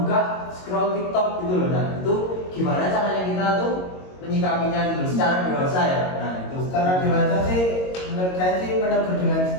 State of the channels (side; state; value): right; late; 22 ms